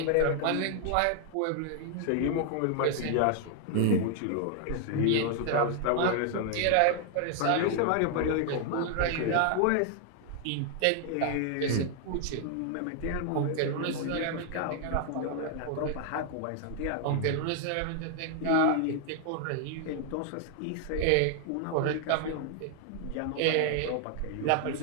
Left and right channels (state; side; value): different; both; correlation 0.00